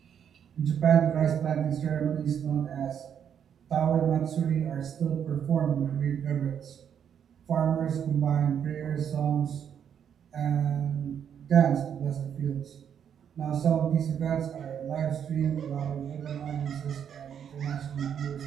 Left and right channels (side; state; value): left; quieter; 8.4 dB